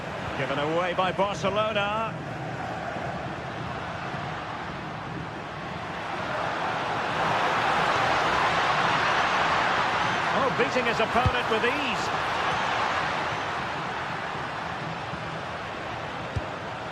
Given away by Barcelona. Oh, beating his opponent with ease.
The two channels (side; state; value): both; identical; correlation 1.00